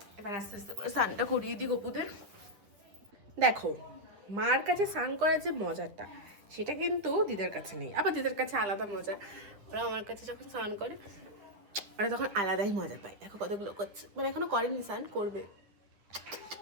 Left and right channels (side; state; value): left; late; 10 ms